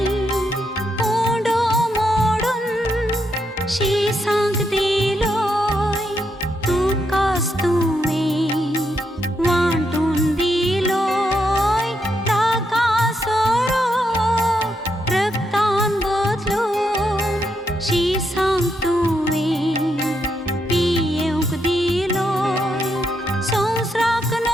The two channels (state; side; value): normal; both; correlation 0.80